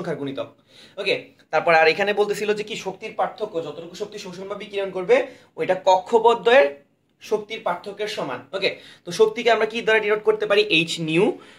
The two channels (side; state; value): both; identical; correlation 1.00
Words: গুণিতক, ওকে। তারপর আর এখানে বলতেছিল যে কি শক্তির পার্থক্য, যতটুকু শক্তি শোষণ বা বিকিরণ করবে ওইটা কক্ষপথদ্বয়ের শক্তির পার্থক্যের সমান, ওকে। তো শক্তিকে আমরা কি দ্বারা ডিনোট করতে পারি? H new.